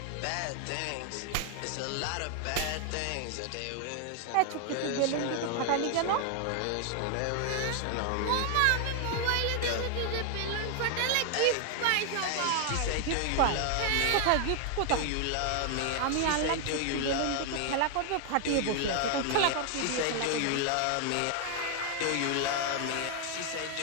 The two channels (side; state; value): both; different; correlation 0.00